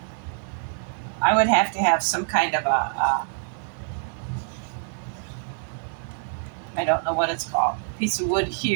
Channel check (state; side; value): silent; left; 61 dB below the other